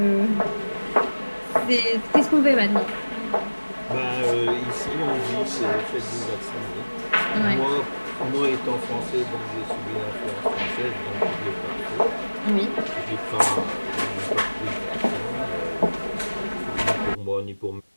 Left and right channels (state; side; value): inverted; both; correlation -1.00